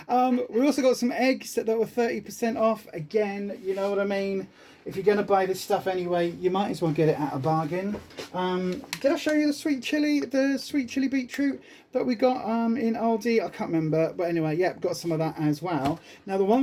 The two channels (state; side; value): identical; both; correlation 1.00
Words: We also got some eggs that were 30% off. Again, you know what I mean? If you're going to buy this stuff anyway, you might as well get it at a bargain. Did I show you the sweet chili beetroot that we got in Aldi? I can't remember, but anyway, yeah, got some of that as well. Now, the